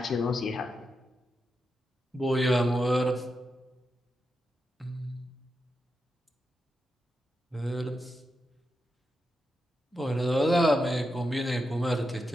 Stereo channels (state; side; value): normal; both; correlation 0.87